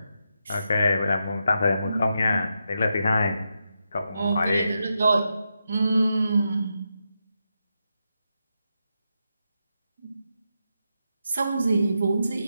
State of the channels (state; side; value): inverted; both; correlation -0.85